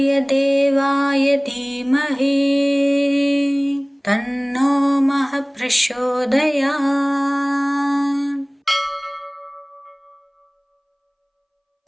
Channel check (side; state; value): both; identical; correlation 1.00